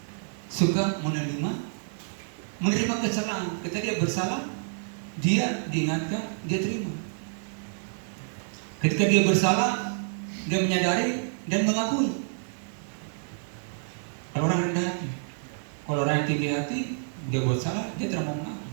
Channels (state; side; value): silent; left; digital silence